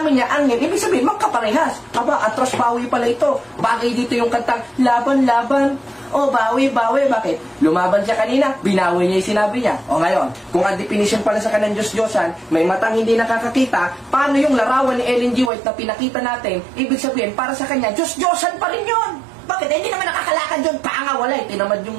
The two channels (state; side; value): drops out; left; at 15.5 s